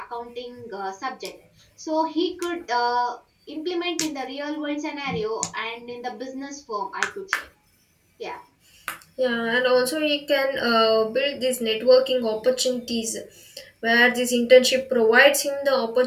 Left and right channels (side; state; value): both; identical; correlation 1.00